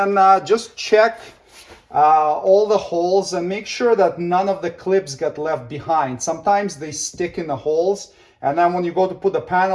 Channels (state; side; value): identical; both; correlation 1.00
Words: just check all the holes and make sure that none of the clips get left behind. Sometimes they stick in the holes, and then when you go to put the